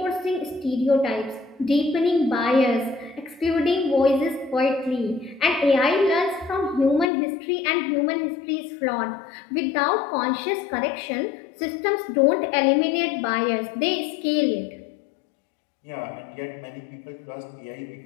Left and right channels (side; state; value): right; drops out; at 7.1 s